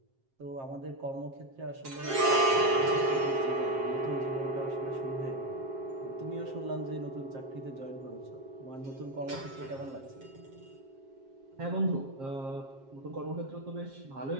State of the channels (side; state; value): left; late; 7.5 ms